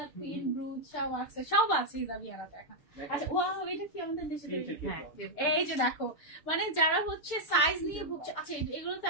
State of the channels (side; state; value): right; late; 6.7 ms